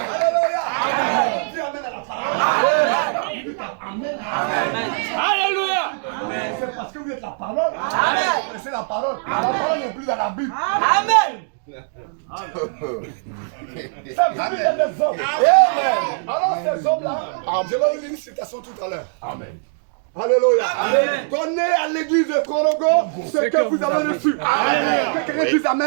Alléluia. Dis amen à la parole. Alléluia. C'est parce que vous êtes la parole. Vous connaissez la parole. La parole n'est plus dans la Bible. Amen. Ça veut dire des hommes. Amen. Alors ces hommes-là, je vais vous lire une citation tout à l'heure. Amen. Alléluia. Donnez à l'église de Korogo ce que vous avez reçu. Amen. Que quelqu'un dise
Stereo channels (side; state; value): left; silent; digital silence